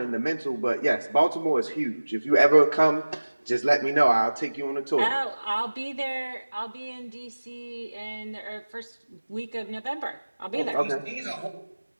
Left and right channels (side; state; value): both; inverted; correlation -1.00